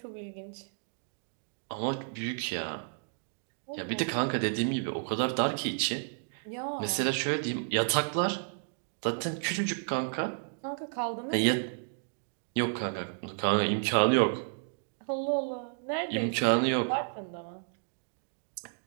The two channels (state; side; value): silent; left; digital silence